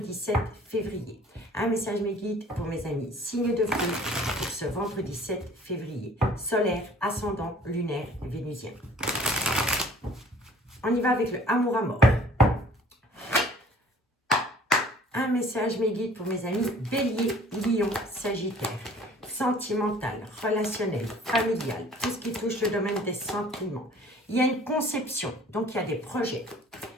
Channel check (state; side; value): normal; both; correlation 0.52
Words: 7 février. Un message mes guides pour mes amis. Signe de feu pour ce vendredi 7 février. Solaire, ascendant, lunaire, vénusien. On y va avec le amour à mort. Un message mes guides pour mes amis. Bélier, Lion, Sagittaire. Sentimental, relationnel, familial, tout ce qui touche le domaine des sentiments. Il y a une conception, donc il y a des projets.